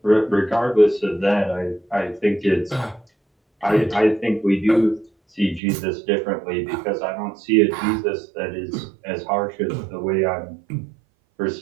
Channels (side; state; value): left; drops out; at 5.6 s